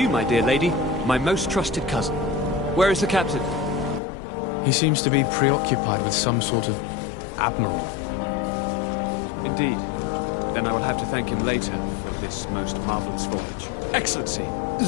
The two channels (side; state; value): right; drops out; at 4.0 s